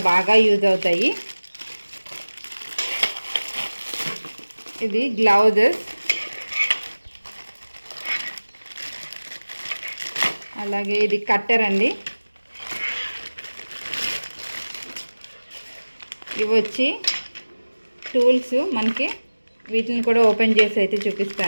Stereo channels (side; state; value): both; inverted; correlation -1.00